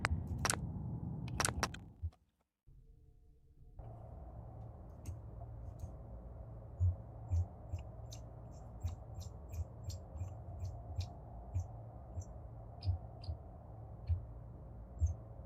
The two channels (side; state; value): both; identical; correlation 1.00